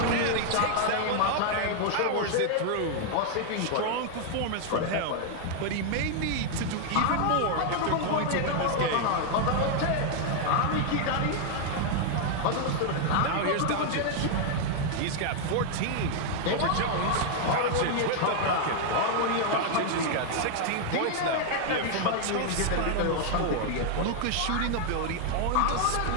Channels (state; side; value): different; both; correlation 0.00